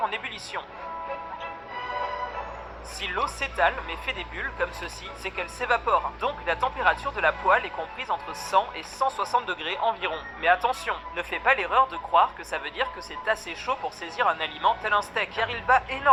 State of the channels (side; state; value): both; identical; correlation 1.00